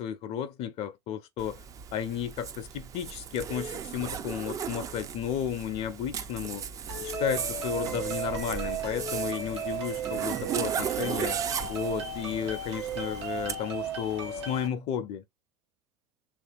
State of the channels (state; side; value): normal; both; correlation 0.24